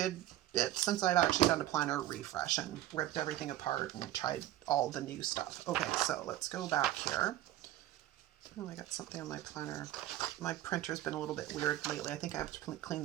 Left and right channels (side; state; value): left; quieter; 14.0 dB